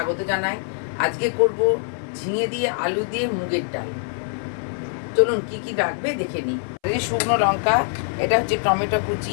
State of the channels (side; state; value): right; silent; 60 dB below the other